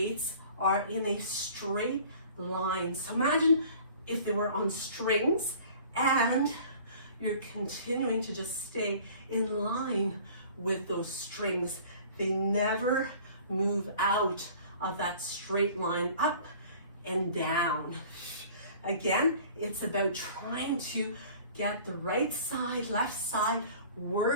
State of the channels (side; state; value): both; inverted; correlation -0.48